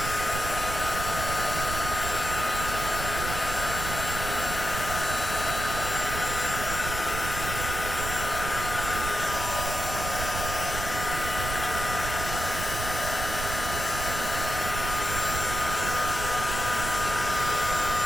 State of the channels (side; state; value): right; noise; rumble, 5 dB below the sound